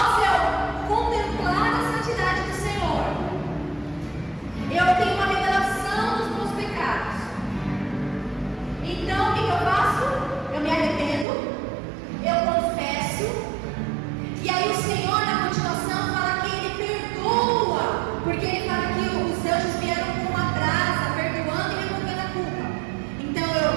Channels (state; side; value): drops out; left; at 11.2 s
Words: eu contemplar a santidade do Senhor, eu tenho uma revelação dos meus pecados. Então, o que eu faço? Eu me arrependo, eu confesso, e aí o Senhor, na continuação, fala que Ele perdoa, porque Ele fala que os anjos vieram com uma brasa, perdoando e removendo a culpa. Então, eu